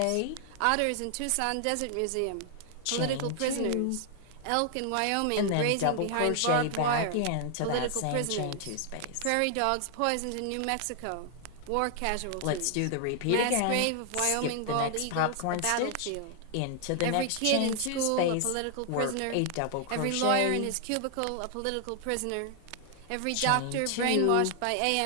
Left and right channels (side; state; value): both; different; correlation 0.00